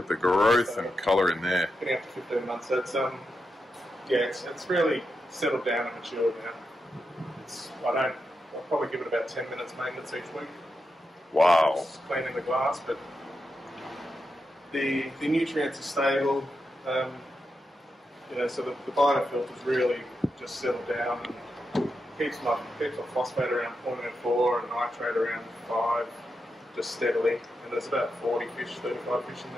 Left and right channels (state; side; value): normal; both; correlation 0.87